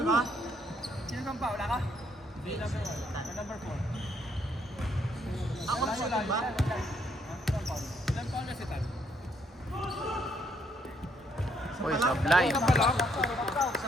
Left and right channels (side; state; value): both; normal; correlation 0.71